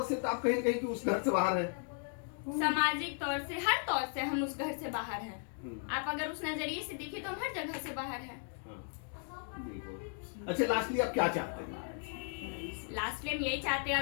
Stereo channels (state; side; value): silent; right; 54 dB below the other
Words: से तो आप कहीं कहीं कि उस घर से बाहर है। सामाजिक तौर से, हर तौर से हम उस घर से बाहर हैं। आप अगर उस नजरिए से देखिए तो हम हर जगह से बाहर हैं। बिल्कुल। अच्छा, लास्टली आप क्या चाहते हैं? लास्ट में यही चाहते हैं,